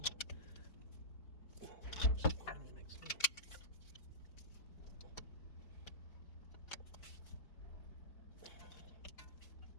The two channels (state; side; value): late; right; 5.0 ms